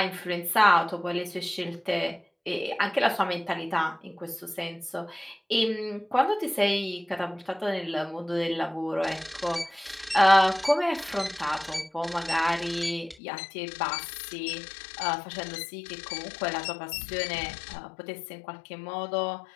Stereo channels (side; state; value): right; drops out; at 13.2 s